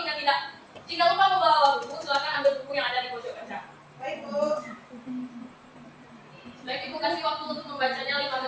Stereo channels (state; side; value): identical; both; correlation 1.00